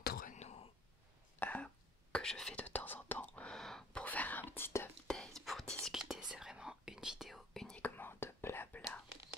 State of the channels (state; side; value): normal; both; correlation 0.53